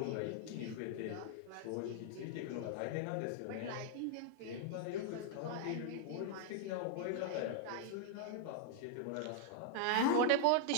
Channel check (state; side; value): different; both; correlation -0.01